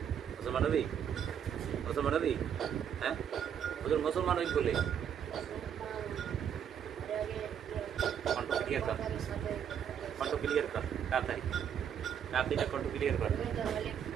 মুসলমান নবী হ্যাঁ হুজুর মুসলমান হই বলে কণ্ঠ ক্লিয়ার কর তাড়াতাড়ি কণ্ঠ ক্লিয়ার কর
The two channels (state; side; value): quieter; left; 8.6 dB